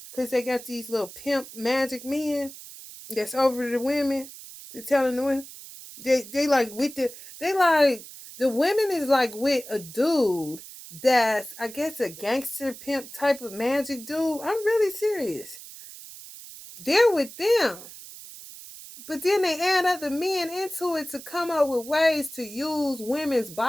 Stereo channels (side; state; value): right; noise; hiss, 15 dB below the sound